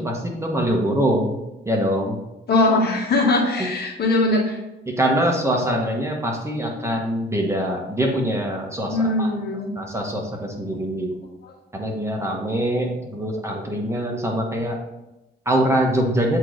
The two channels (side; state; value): both; normal; correlation 0.47